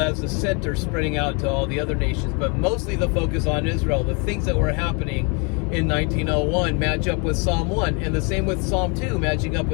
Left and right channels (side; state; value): right; quieter; 33.3 dB